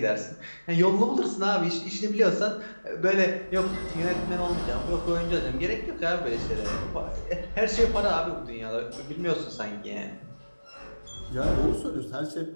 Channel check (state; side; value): inverted; both; correlation -1.00